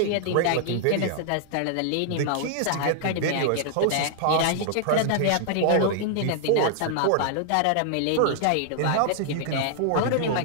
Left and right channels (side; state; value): both; different; correlation -0.01